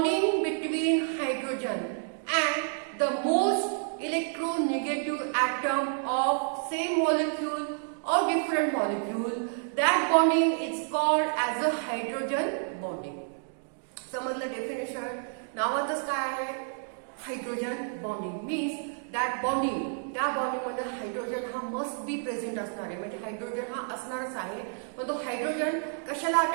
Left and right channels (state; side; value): silent; left; 58 dB below the other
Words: between hydrogen and the most electronegative atom of same molecule or different molecule, that bonding is called as a hydrogen bonding. समजलं डेफिनेशन? नावातच काय आहे? Hydrogen bonding means that bonding, त्या बॉन्डिंग मध्ये हायड्रोजन हा must be present असणार आहे, म्हणजे हायड्रोजन हा असणारच आहे. पण तो हायड्रोजन कशाला